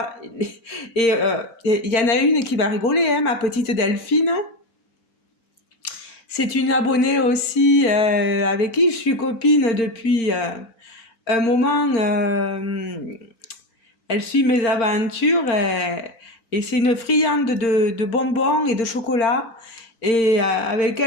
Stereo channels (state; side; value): late; right; 4.4 ms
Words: et il y en a une qui va rigoler, hein, ma petite Delphine. C'est une abonnée aussi avec qui je suis copine depuis un moment. Elle suit mes aventures et c'est une friande de bonbons et de chocolat. Et avec